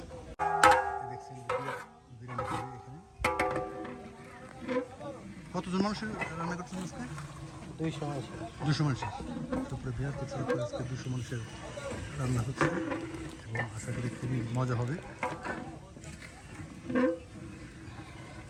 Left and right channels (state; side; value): identical; both; correlation 1.00